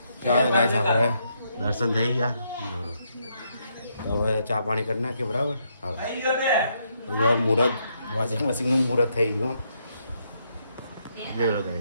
ચાલો ગાઈસ, આપણે દર્શન થઈ ગયા. હવે ચા પાણી કરી નાખીએ, બરાબર? હવે મુહૂર્ત વોશિંગ મશીનનું મુહૂર્ત થઈ ગયું.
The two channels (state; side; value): inverted; both; correlation -0.76